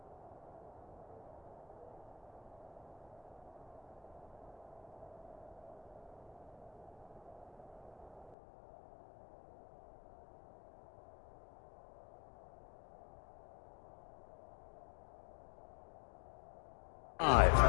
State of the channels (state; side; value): drops out; right; at 8.3 s